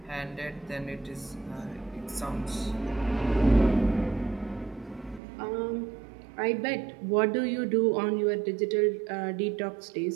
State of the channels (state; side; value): drops out; left; at 5.2 s